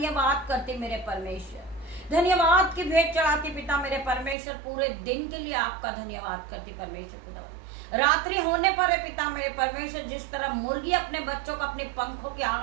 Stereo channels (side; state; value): left; drops out; at 4.4 s